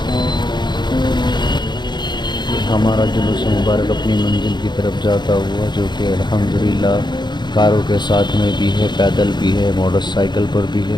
ہمارا جلوس مبارک اپنی منزل کی طرف جاتا ہوا، جو کہ الحمدللہ کاروں کے ساتھ میں بھی ہے، پیدل بھی ہے، موٹر سائیکل پر بھی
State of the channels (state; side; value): late; right; 0.21 ms